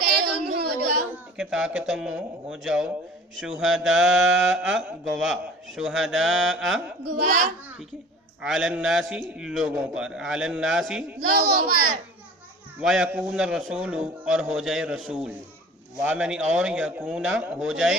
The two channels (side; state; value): both; normal; correlation 0.44